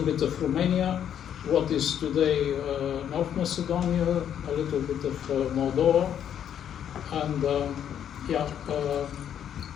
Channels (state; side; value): quieter; right; 9.5 dB